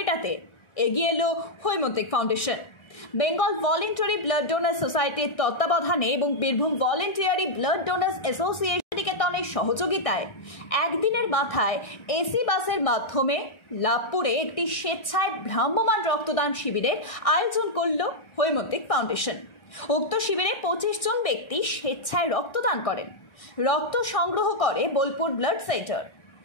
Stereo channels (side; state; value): right; late; 1.6 ms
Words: এগিয়ে এলো Haimantik foundation. Bengal voluntary blood donors সোসাইটির তত্ত্বাবধানে এবং Birbhum voluntary blood donors association নিকেতনের সহযোগিতায় একদিনের মাথায় এসি বাসের মাধ্যমে লাভপুরে একটি স্বেচ্ছায় ভ্রাম্যমাণ রক্তদান শিবিরের আয়োজন করল হৈমন্তিক ফাউন্ডেশন। উক্ত শিবিরে 25 জন ব্যক্তি স্বেচ্ছায় রক্তদান করেন। রক্ত সংগ্রহ করে বোলপুর ব্লাড সেন্টার।